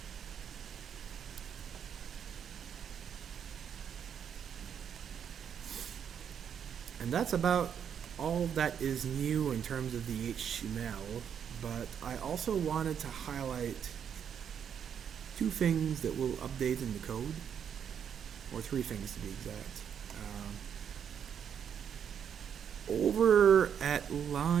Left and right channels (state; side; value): quieter; left; 8.1 dB